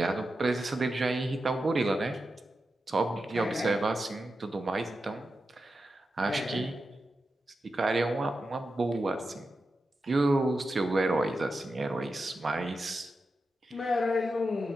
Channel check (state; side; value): normal; both; correlation 0.90